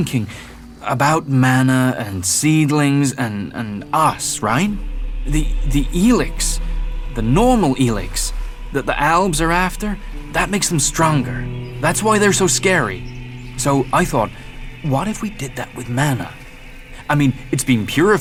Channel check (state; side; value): identical; both; correlation 1.00